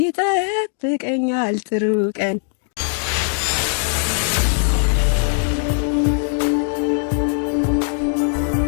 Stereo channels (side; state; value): right; silent; 61 dB below the other